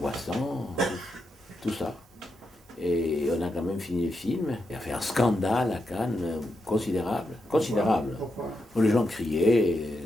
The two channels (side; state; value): both; normal; correlation 0.85